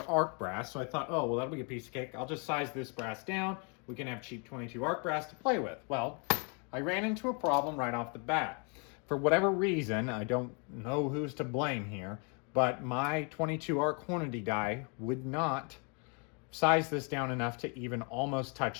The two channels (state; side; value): quieter; right; 35.8 dB